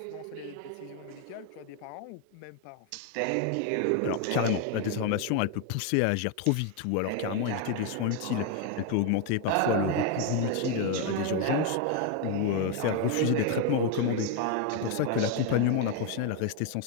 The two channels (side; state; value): both; different; correlation 0.01